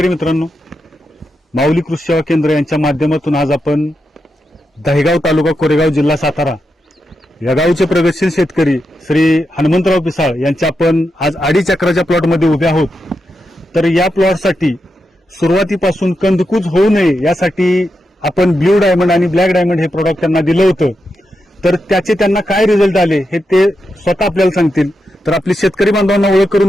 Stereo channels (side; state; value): both; normal; correlation 0.86